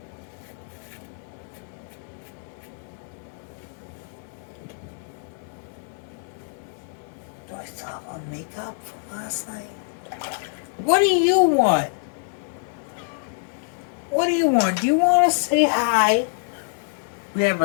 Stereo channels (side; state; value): right; silent; digital silence